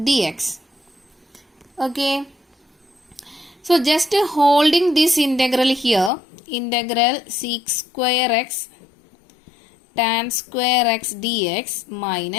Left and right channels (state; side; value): drops out; right; at 6.1 s